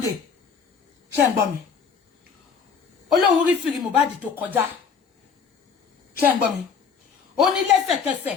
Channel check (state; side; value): quieter; right; 6.1 dB